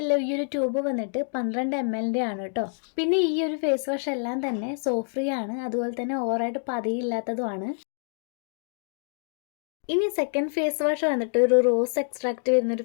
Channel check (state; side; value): silent; right; digital silence